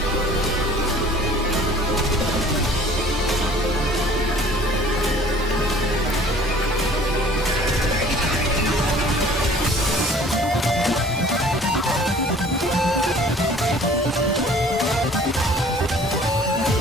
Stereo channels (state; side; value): normal; both; correlation 0.51